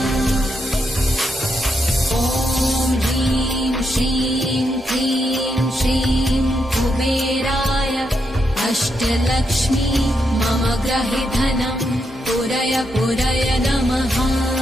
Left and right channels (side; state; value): both; normal; correlation 0.81